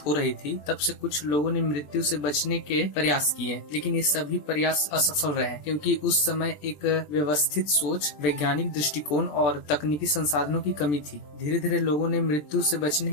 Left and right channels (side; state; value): right; late; 20 ms